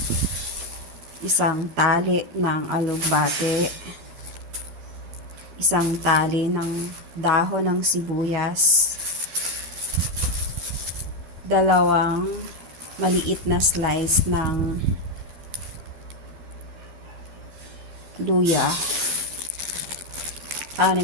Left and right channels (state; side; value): late; left; 12 ms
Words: isang tali ng alugbate, isang tali ng dahon ng sibuyas, dalawang maliit na slice ng luya,